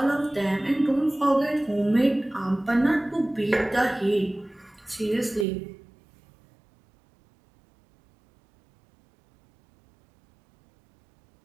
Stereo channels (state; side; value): drops out; left; at 5.5 s